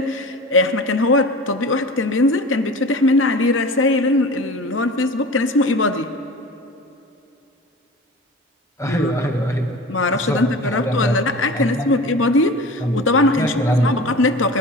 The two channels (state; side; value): normal; both; correlation 0.36